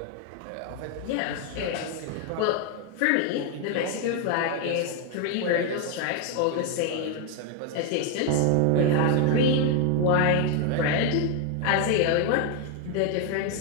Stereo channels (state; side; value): different; both; correlation 0.01